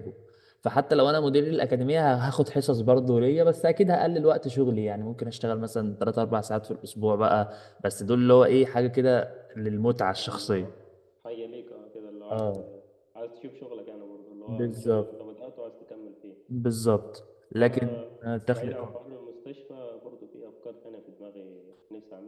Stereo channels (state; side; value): identical; both; correlation 1.00